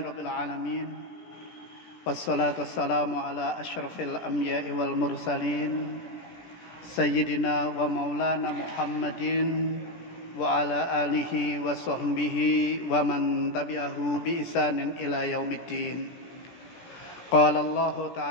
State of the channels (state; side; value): late; right; 17 ms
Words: alamin. Wassalatu wassalamu ala asyrafil anbiya'i wal mursalin sayyidina wa maulana Muhammadin wa ala alihi wa sahbihi wa man tabi'ahu bi ihsanin ila yaumiddin. Qala Allah